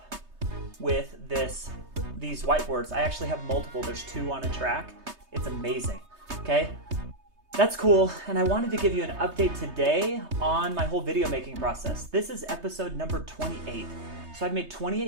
with these whiteboards. I actually have multiple. There's 2 on a track. It's amazing. Okay? That's cool, and I wanted to give you an update today on my whole video making process. This is episode number 28. So I've made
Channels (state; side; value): late; left; 3.2 ms